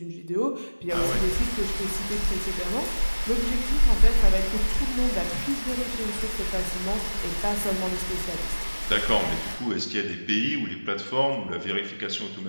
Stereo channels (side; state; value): both; inverted; correlation -1.00